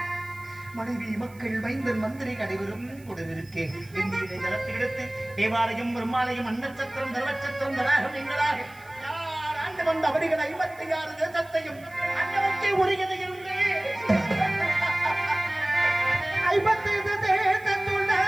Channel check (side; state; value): right; noise; hiss, 25 dB below the sound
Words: மனைவி மக்கள் மைந்தன் மந்திரி அனைவரும் உடனிருக்கே இந்திய ஜலத்தை எடுத்து தேவாலயம் பெருமாலயம் அன்னச்சத்திரம் தர்மச்சத்திரம் தடாகம் எங்களாக யார் ஆண்டு வந்த அவர்கள் 56 தேசத்தையும் அன்னவற்றை உரியது என்று 55 தேசத்துள்ள